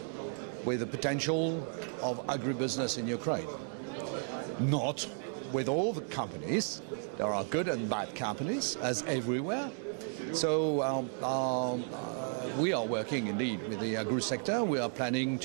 with the potential of agribusiness in Ukraine. Not with all the companies. There are good and bad companies, as everywhere. So we are working indeed with the agri sector. We are planning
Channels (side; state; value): left; silent; 55 dB below the other